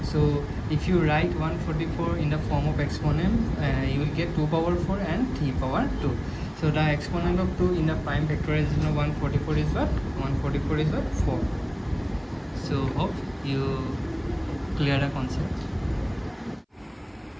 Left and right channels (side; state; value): both; identical; correlation 1.00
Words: So if you write 144 in the form of exponent, you will get 2 power 4 and 3 power 2. So the exponent of 2 in the prime factorization of 144 is what? 144 is what? 4. So hope you clear the concept.